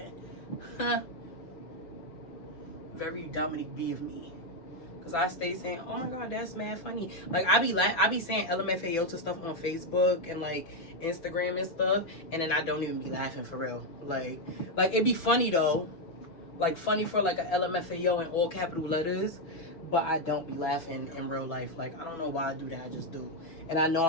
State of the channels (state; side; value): late; right; 6.1 ms